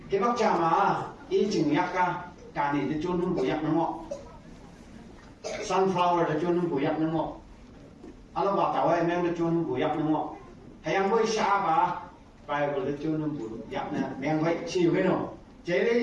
cái bác cha mà ý chừng yak cả này thì chôn không bùi yak nó ngọ sunflower thì chôn không bùi yak nó ngọ anh bảo tao em thì chôn không bùi yak nó ngọ hay anh bôi sa bà Bible thì chôn không bùi yak nè em vậy chịu cái nào chế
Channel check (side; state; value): both; identical; correlation 1.00